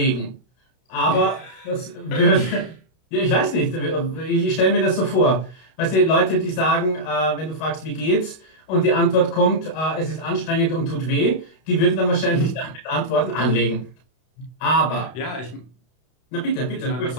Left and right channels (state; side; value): late; right; 32 ms